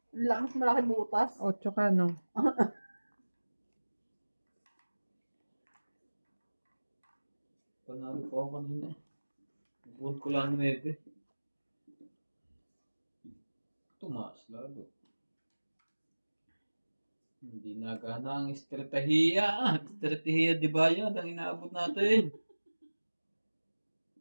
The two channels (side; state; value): both; inverted; correlation -1.00